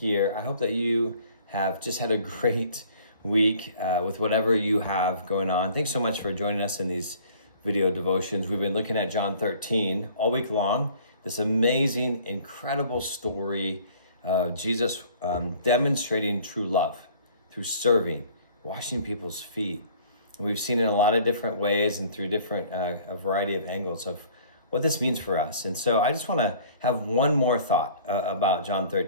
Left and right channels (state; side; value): inverted; both; correlation -0.53